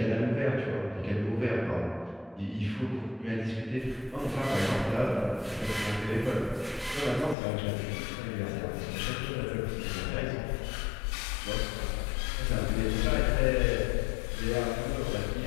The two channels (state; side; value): drops out; right; at 7.4 s